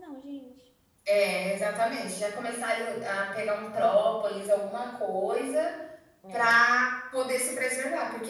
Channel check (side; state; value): both; identical; correlation 1.00